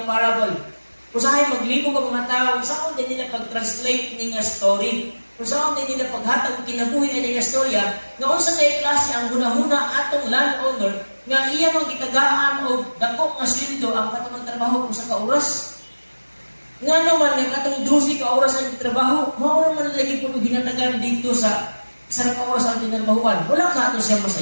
parable. Kung saan maglibo ka mga tao, kung saan din nila pag-translate ng story, kung saan din nila paghatag kinabuhi ng storya, nga unsa na klase ang hunahuna atong landowner, nga iya mang gitagaan o dako nga sweldo ang katong trabaho kung sa kauras. Nga naman, nga katong 12 ka oras ang trabaho, mao man lagi po ginatagan dito sa sarap oras ang tinarbahuan. Wala ka ito siya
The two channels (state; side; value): inverted; both; correlation -1.00